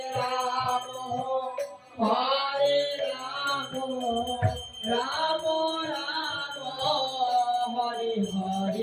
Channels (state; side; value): identical; both; correlation 1.00